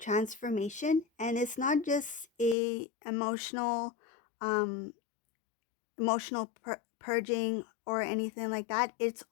and it's not just a um, emotional purging or anything like that. It's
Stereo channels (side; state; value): right; drops out; at 2.6 s